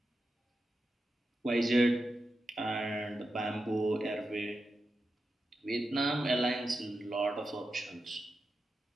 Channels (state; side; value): normal; both; correlation 0.89